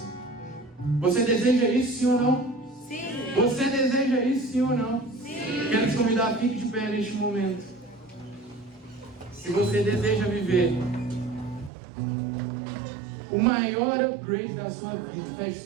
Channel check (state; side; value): drops out; left; at 11.7 s